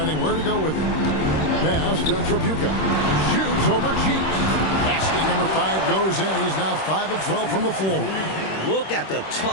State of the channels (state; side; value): late; right; 26 ms